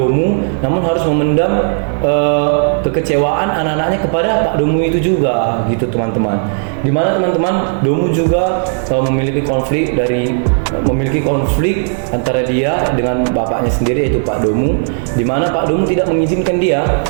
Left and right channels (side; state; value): left; silent; digital silence